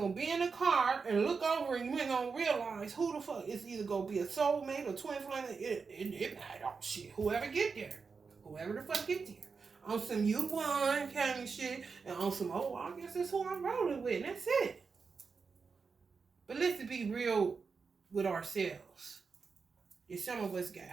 be in the car and look over and you ain't gonna realize who the fuck is either gonna be a soulmate or twin flame. It oh shit. Whoever get there. Whoever the fuck get there. On some you won kind of shit. And on some, oh, I guess that's who I'm rolling with. And that's it. But let's be real with ourselves. If some of us got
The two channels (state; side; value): quieter; left; 5.1 dB